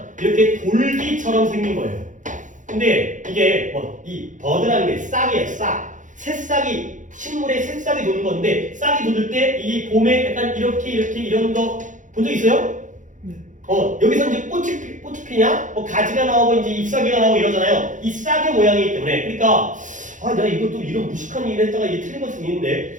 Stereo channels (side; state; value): left; late; 0.37 ms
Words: 이렇게 돌기처럼 생긴 거예요. 근데 이게 이 버드라는 게 싹이에요. 싹. 새싹이 식물에 새싹이 도는 건데 싹이 돋을 때 이 봄에 약간 이렇게 이런 거 본 적 있어요? 여기서 이제 꽃이 피냐? 가지가 나오고 이제 잎사귀가 나오고 이러잖아요. 이 싹의 모양이기 때문에. 그러니까 내가 이것도 이런 무식한 일을 했다가 이게 틀린 걸 수도